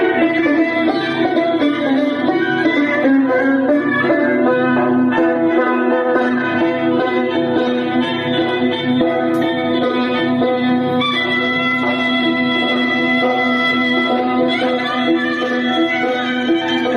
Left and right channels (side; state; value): both; identical; correlation 1.00